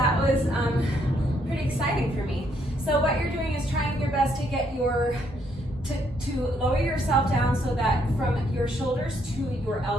was pretty exciting for me. So what you're doing is trying your best to get to lower yourself down so that from your shoulders to your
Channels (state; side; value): normal; both; correlation 0.72